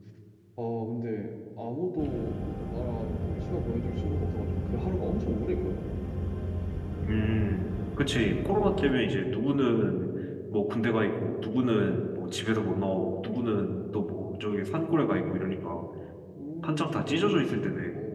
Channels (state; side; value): identical; both; correlation 1.00